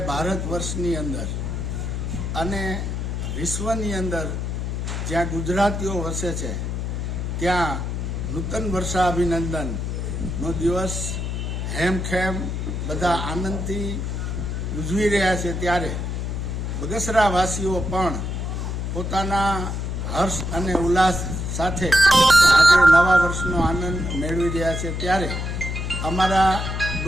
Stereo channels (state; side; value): noise; left; hum, 3 dB below the sound